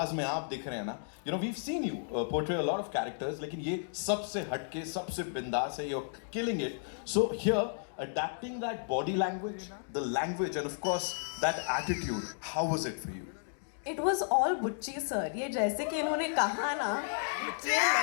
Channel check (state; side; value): silent; right; digital silence